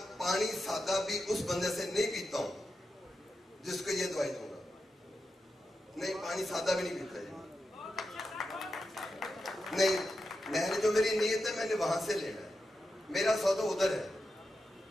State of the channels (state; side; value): normal; both; correlation 0.89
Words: پانی سادہ بھی اس بندے سے نہیں پیتا ہوں جس کو یہ دوائی دوں گا. نہیں, پانی سادہ بھی نہیں پیتا نہیں. میں نے جو میری نیت ہے میں نے وہاں سے لینا ہے. میرا سودا ادھر ہے,